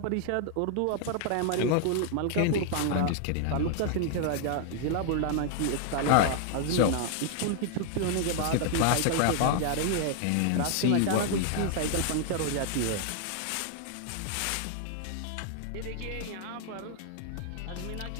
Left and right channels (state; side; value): different; both; correlation 0.00